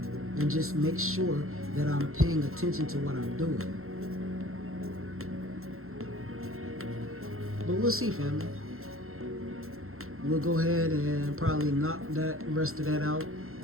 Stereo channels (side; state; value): left; late; 0.62 ms